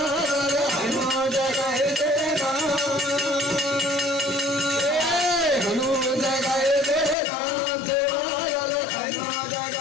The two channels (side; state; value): right; drops out; at 7.2 s